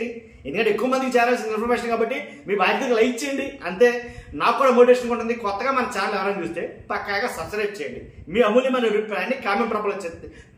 ఎందుకంటే ఎక్కువ మందికి చేరాల్సిన ఇన్ఫర్మేషన్ కాబట్టి మీ బాధ్యతగా లైక్ చేయండి. అంతే, నాకు కూడా మోటివేషన్ ఉంటుంది. కొత్తగా మన ఛానల్ ఎవరైనా చూస్తే పక్కాగా సబ్స్క్రైబ్ చేయండి. మీ అమూల్యమైన అభిప్రాయాన్ని కామెంట్ రూపంలో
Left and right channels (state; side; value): identical; both; correlation 1.00